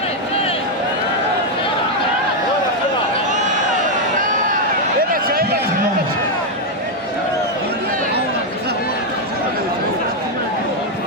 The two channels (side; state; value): both; normal; correlation 0.02